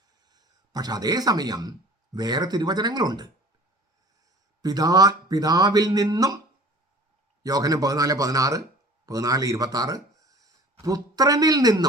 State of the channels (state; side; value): normal; both; correlation 0.46